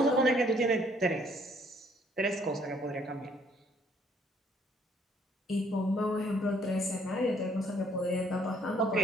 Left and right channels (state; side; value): normal; both; correlation 0.64